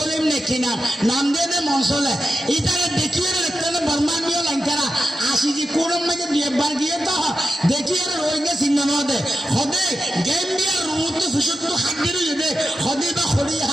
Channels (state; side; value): normal; both; correlation 0.90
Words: নেকি নাম দিয়ে দে মংসলে ইতারে দেখিয়ে দেখতে বর্মানীয় লঙ্কারা আইসিজি কুডার মধ্যে বিয়েবার গিয়ে তো দেখিয়ে রোহিঙ্গা চিহ্ন দে হদে গেম্বিয়ার রুমুতু ফিসুতু হাত দিরু দে হদে বা খড়িয়া